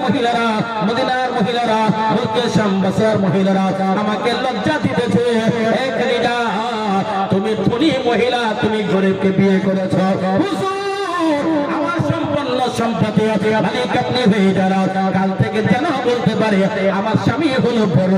মহিলারা, মদিনার মহিলারা, মুলকে শাম বসরার মহিলারা আমাকে লজ্জা দিতেছে। হে খাদিজা তুমি ধনী মহিলা, তুমি গরিবকে বিয়ে করেছো। হুজুর আমার সম্পন্ন সম্পত্তি মালিক আপনি হয়ে যারা কাল থেকে যেন বলতে পারে আমার স্বামী হলো বড়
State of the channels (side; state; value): both; identical; correlation 1.00